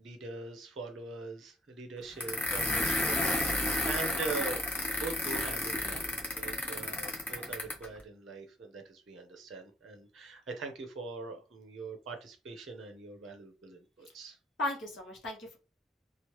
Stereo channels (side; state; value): both; normal; correlation 0.63